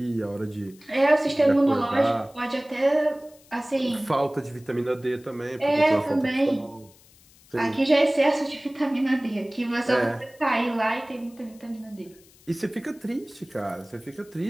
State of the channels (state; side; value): noise; left; hiss, 27 dB below the sound